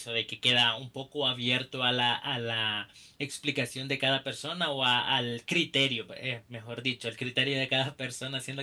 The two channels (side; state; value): both; identical; correlation 1.00